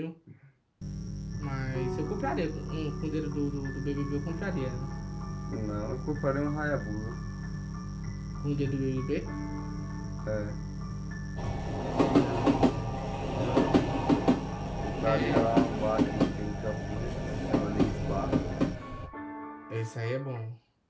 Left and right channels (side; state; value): both; identical; correlation 1.00